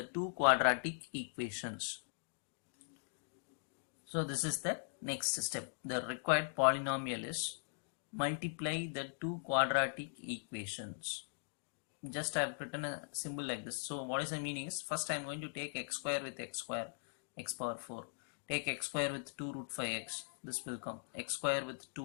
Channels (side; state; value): right; silent; digital silence